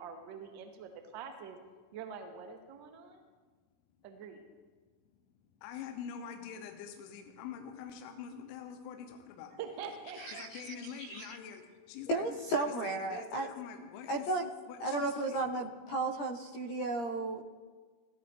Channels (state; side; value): late; right; 17 ms